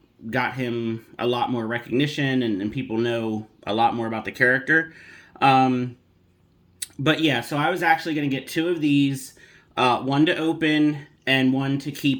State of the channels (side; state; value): both; identical; correlation 1.00